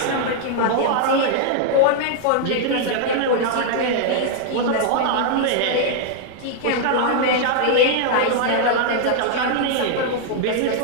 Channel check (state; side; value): different; both; correlation -0.01